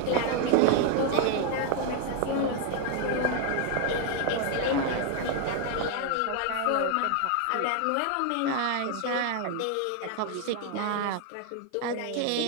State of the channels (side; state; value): both; different; correlation 0.01